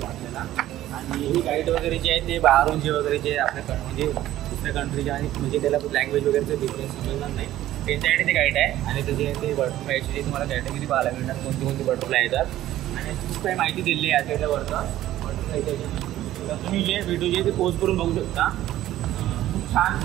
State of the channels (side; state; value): left; quieter; 13.8 dB